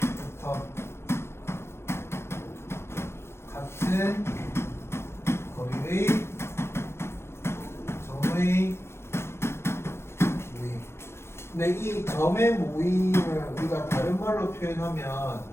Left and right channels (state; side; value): late; right; 0.12 ms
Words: 같은 거리의 점의 모임. 근데 이 점의 모임을 우리가 다른 말로 표현하면